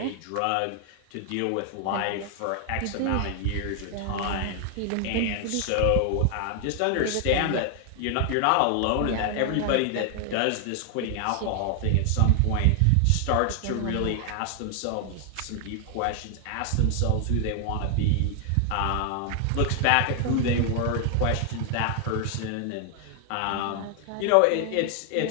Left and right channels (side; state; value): both; different; correlation 0.00